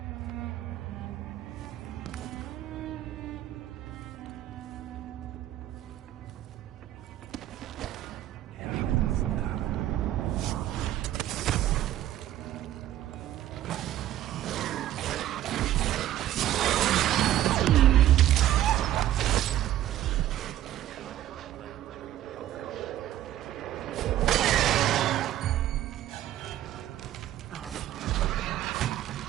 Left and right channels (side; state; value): left; quieter; 13.0 dB